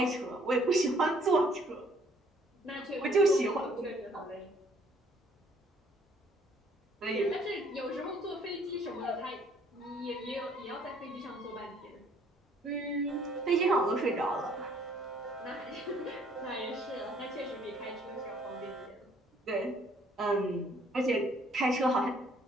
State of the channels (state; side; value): normal; both; correlation 0.62